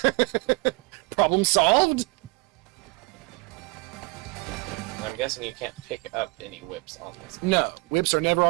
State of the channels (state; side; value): quieter; left; 26.1 dB